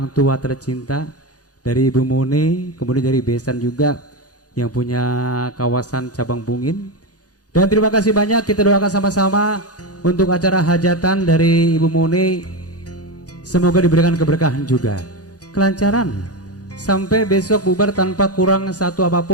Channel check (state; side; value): late; right; 0.68 ms